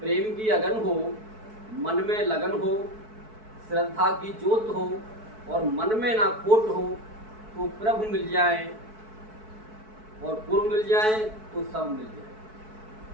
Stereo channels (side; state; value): left; late; 4.6 ms